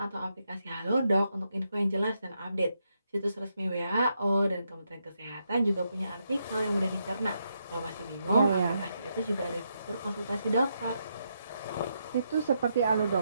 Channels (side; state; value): both; inverted; correlation -0.81